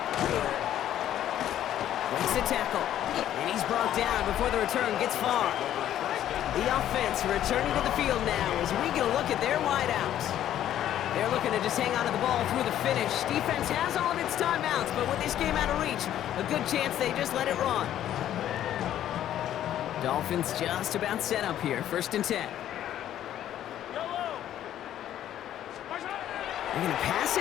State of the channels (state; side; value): quieter; right; 11.5 dB